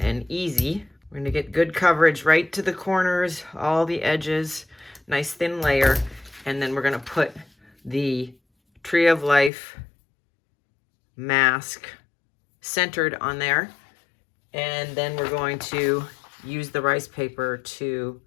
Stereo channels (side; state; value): right; drops out; at 9.5 s